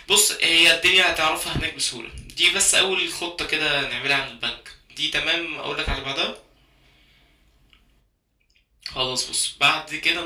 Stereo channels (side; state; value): both; identical; correlation 1.00